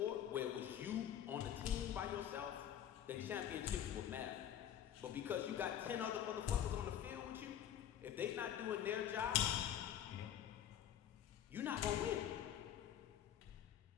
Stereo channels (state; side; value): quieter; right; 10.2 dB